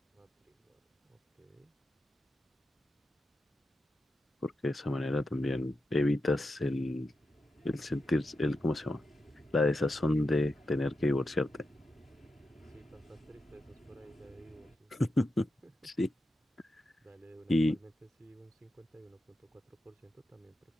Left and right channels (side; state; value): both; normal; correlation 0.88